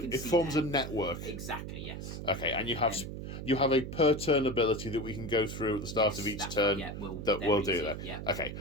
forms a network. Exactly, yes. Okay, and you have a per turn ability that we can go through at the start of each turn we'll do that. Yeah. Okay,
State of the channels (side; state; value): right; noise; hum, 7 dB below the sound